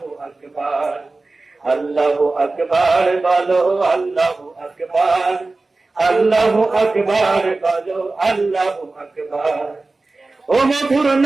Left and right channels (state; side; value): quieter; left; 3.4 dB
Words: আকবার, আল্লাহু আকবার বলো, আল্লাহু আকবার, আল্লাহু আকবার বলো, আল্লাহু আকবার। ও মধুর